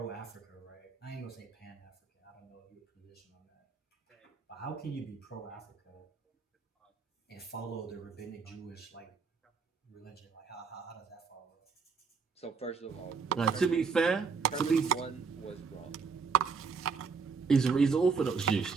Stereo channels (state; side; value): quieter; left; 5.1 dB